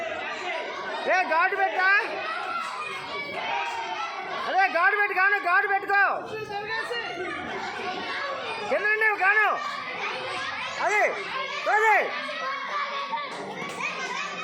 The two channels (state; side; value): identical; both; correlation 1.00